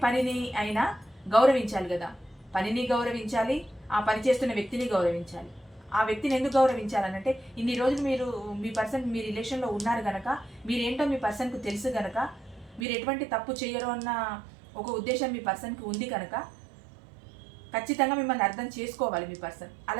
పనిని అయినా గౌరవించాలి కదా. పనిని గౌరవించాలి, ఆ పని చేస్తున్న వ్యక్తిని గౌరవించాలి. ఆ వ్యక్తిని ఎందుకు గౌరవించాలనంటే ఇన్ని రోజులు మీరు మీ పర్సన్ మీ రిలేషన్లో ఉన్నారు గనక, మీరేంటో మీ పర్సన్కు తెలుసు గనక, మీరు ఎటువంటి తప్పు చేయరు అన్న ఒక ఉద్దేశం మీ పర్సన్కి ఉంది కనుక ఖచ్చితంగా మిమ్మల్ని అర్థం చేసుకోవాలి మీ పర్సన్.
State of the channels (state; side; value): drops out; left; at 12.9 s